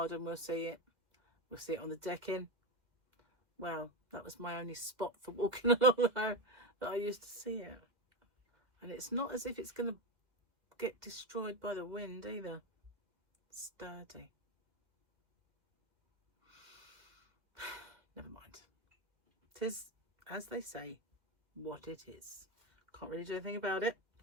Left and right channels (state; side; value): late; left; 2.0 ms